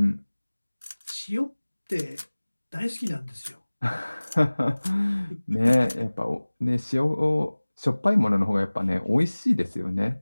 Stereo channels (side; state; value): both; inverted; correlation -1.00